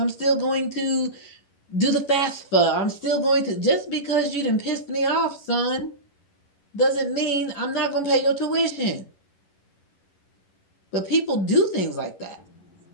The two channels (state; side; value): late; right; 11 ms